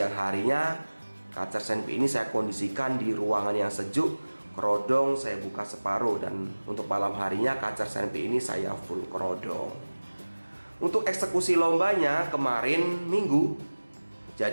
harinya kacer senpi ini saya kondisikan di ruangan yang sejuk, kerodong saya buka separuh. Dan untuk malam harinya kacer senpi ini saya full kerodong. Untuk eksekusi lombanya kemarin minggu,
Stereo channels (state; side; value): inverted; both; correlation -1.00